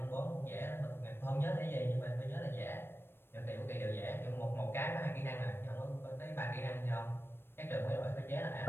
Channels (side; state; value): right; late; 0.11 ms